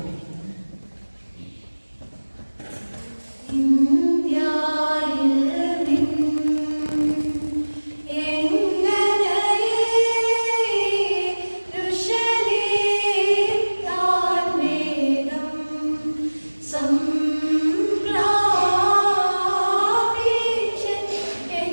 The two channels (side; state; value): both; inverted; correlation -1.00